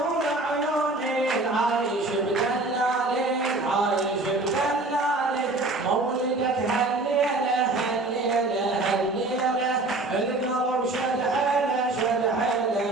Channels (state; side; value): quieter; left; 3.0 dB